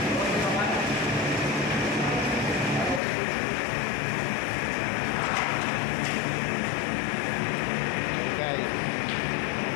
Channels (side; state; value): right; drops out; at 3.0 s